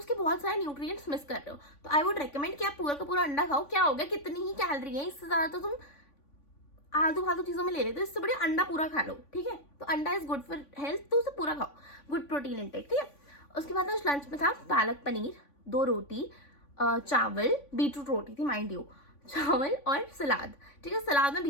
बहुत सारे न्यूट्रिएंट्स मिस कर रहे हो। तो आई वुड रिकमेंड कि आप पूरा का पूरा अंडा खाओ। क्या हो गया, कितनी ही कैलोरी है, इससे ज्यादा तो तुम आलतू फालतू चीजों में ले लेते हो, इससे बढ़िया अंडा पूरा खा लो। ठीक है, तो अंडा इज गुड फॉर हेल्थ, तो उसे पूरा खाओ, गुड प्रोटीन इंटेक। ठीक है, उसके बाद आज लंच में था पालक पनीर, 2 रोटी, चावल, बीटरूट रोटी थी माइंड यू, चावल और सलाद। ठीक है, सलाद में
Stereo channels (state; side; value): late; right; 3.5 ms